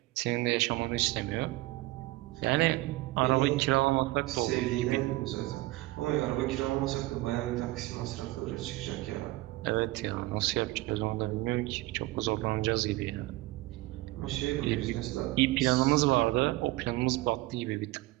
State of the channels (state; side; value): quieter; left; 19.1 dB